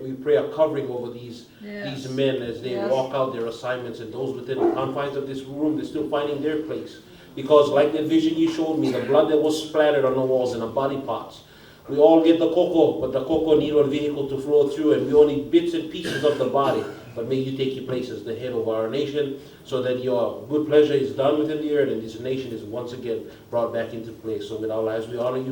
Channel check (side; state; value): both; identical; correlation 1.00